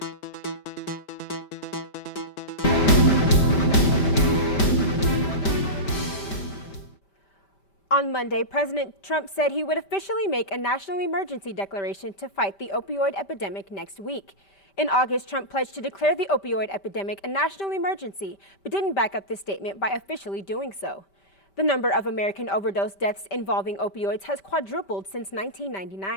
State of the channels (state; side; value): late; right; 5.1 ms